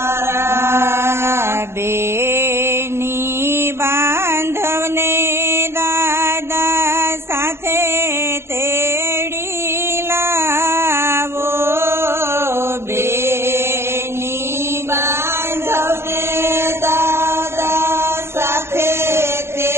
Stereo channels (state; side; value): late; left; 0.12 ms